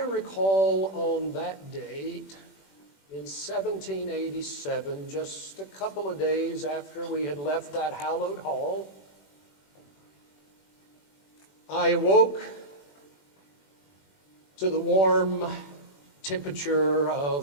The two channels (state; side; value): late; right; 21 ms